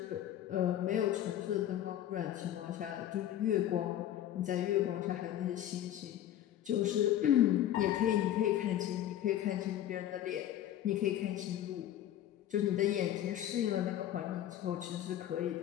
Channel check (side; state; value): right; quieter; 11.7 dB